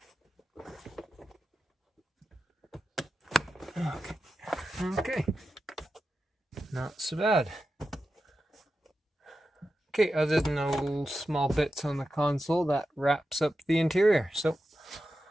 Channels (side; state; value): both; normal; correlation 0.91